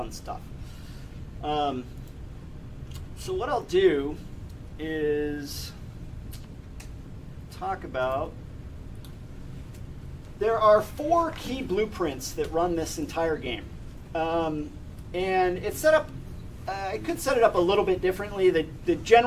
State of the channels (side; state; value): both; identical; correlation 1.00